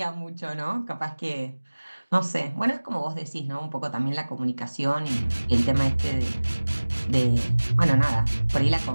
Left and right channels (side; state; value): both; inverted; correlation -1.00